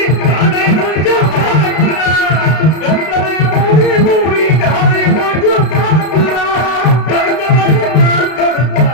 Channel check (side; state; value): right; late; 32 ms